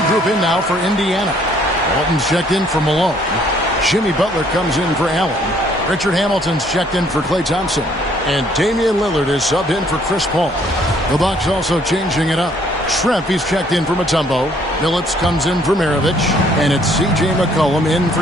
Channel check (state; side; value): normal; both; correlation 0.63